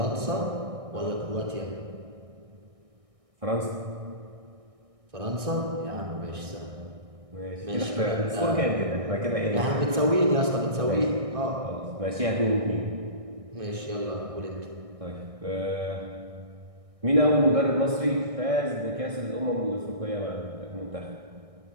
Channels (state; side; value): late; left; 1.6 ms